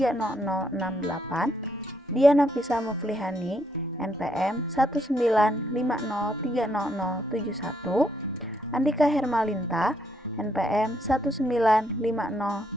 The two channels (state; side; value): normal; both; correlation 0.74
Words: Diana Fisa Muflihani, NPM 195030071, Andika Hermalinta, NPM